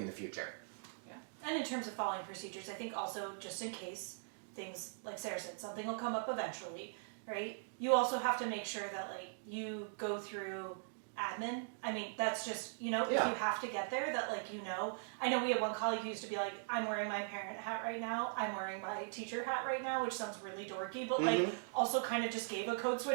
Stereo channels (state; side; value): silent; left; digital silence